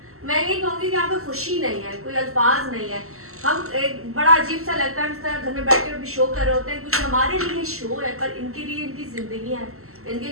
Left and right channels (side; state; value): left; late; 0.63 ms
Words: मैं ये कहूँगी कि यहाँ पे खुशी नहीं है, कोई अल्फाज नहीं है। हम एक बड़ा अजीब सा लगता है, इस तरह घर में बैठ के भी शो कर रहे होते हैं, कुछ हमारे लिए शो है पर इनके लिए इनकी जिंदगी है, इनके